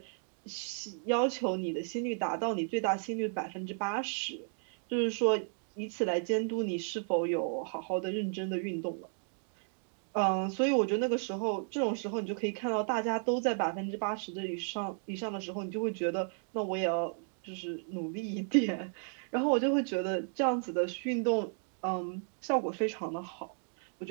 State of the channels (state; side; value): silent; left; 55 dB below the other